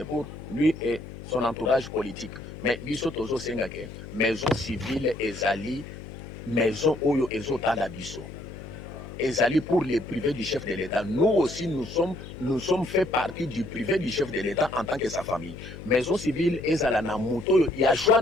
pour lui et son entourage politique mais biso tozo senga que maison civile ezali maison oyo ezotala biso ezali pour les privés du chef de l'État. Nous aussi, nous sommes fait partie du privé du chef de l'État en tant que sa famille. Maison civile, ezala na moto, il y a choix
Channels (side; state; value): left; noise; hum, 13 dB below the sound